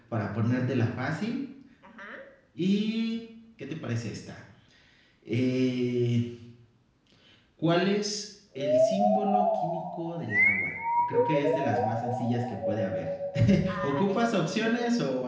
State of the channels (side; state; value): both; identical; correlation 1.00